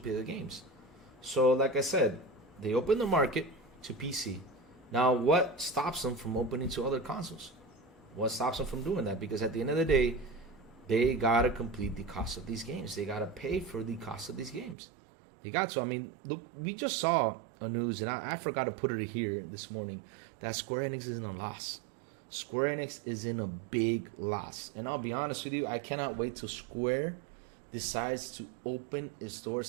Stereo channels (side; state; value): left; drops out; at 14.8 s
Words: the games. So like I said, they open the market to PC. Now, what stops them from opening to other consoles? What stops them from doing that? Because at the end of the day, they gotta complete the cost of these games. They gotta pay for the cost of these games. They got to. I mean, look, we just saw a news, and I forgot to put it here this morning, that Square Enix is in a loss. Square Enix is in a big loss. And I'll be honest with you, I cannot wait till Square decides to open its doors